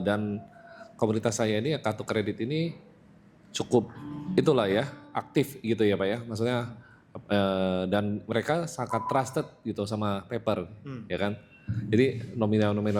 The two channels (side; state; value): both; identical; correlation 1.00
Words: dan komunitas saya ini kartu kredit ini cukup itulah ya, aktif gitu ya Pak ya, maksudnya dan mereka sangat trusted gitu sama paper ya kan. Jadi